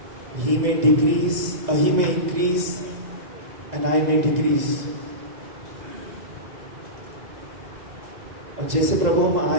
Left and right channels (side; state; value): left; late; 2.0 ms